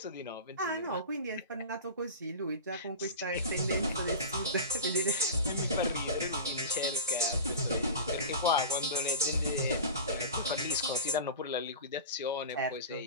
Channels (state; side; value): inverted; both; correlation -0.32